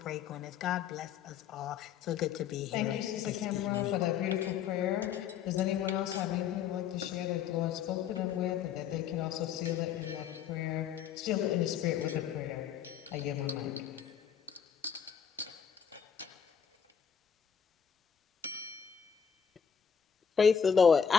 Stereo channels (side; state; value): right; quieter; 7.7 dB